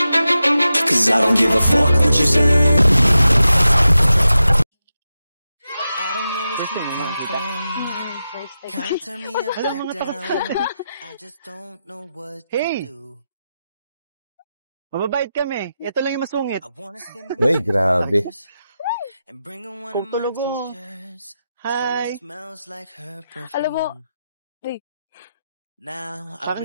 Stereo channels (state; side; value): inverted; both; correlation -0.90